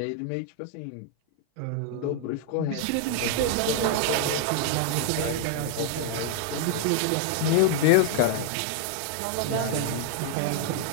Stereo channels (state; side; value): different; both; correlation 0.00